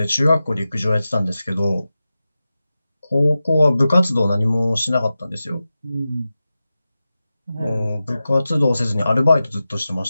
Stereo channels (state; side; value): inverted; both; correlation -0.94